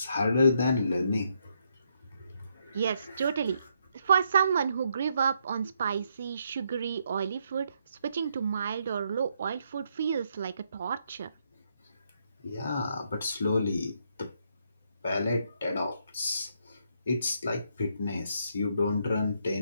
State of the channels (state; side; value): inverted; both; correlation -0.75